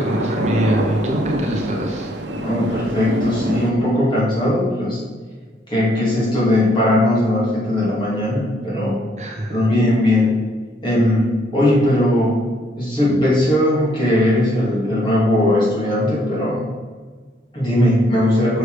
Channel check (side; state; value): both; normal; correlation 0.69